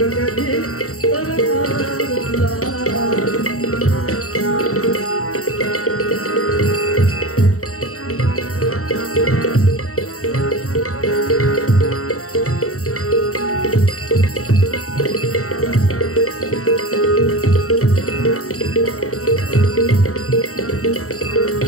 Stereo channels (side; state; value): right; late; 0.64 ms